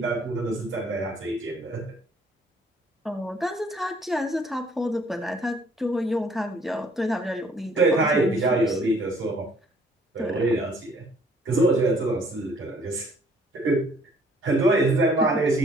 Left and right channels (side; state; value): both; normal; correlation 0.60